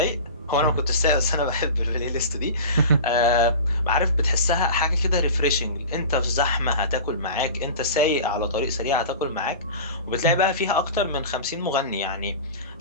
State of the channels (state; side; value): inverted; both; correlation -0.33